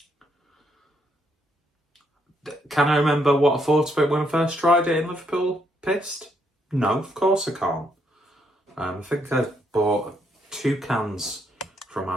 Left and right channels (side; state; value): both; normal; correlation 0.74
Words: Can I remember what I thought of it when I first tried it in Liverpool? Pissed? No, of course I can't. I think I bought 2 cans from